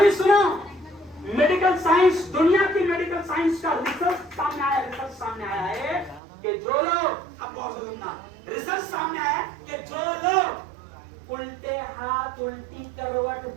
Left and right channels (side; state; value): left; drops out; at 6.2 s